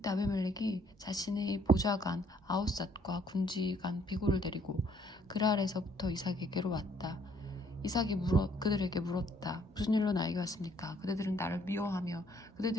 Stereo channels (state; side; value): normal; both; correlation 0.64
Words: 아비멜렉이 자신의 보좌관 아웃삿과 군지관 비고를 데리고 그랄에서부터 이삭에게로 왔다. 이삭이 그들에게 물었다. 무슨 일로 나에게 왔습니까? 그대들은 나를 미워하며